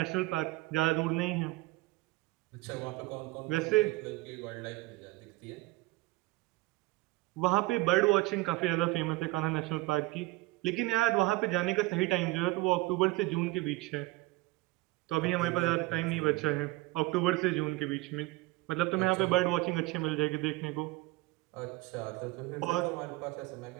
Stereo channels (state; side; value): quieter; left; 20.5 dB